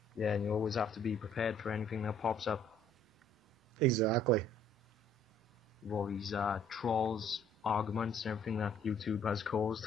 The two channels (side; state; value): both; normal; correlation 0.59